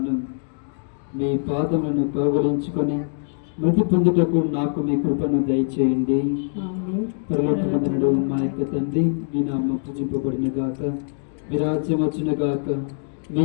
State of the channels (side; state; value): right; silent; digital silence